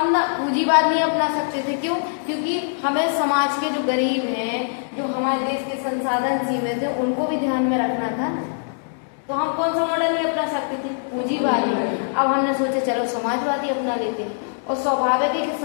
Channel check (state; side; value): silent; right; digital silence